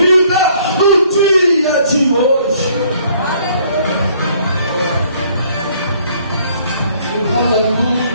no dia de hoje.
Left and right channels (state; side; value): inverted; both; correlation -0.62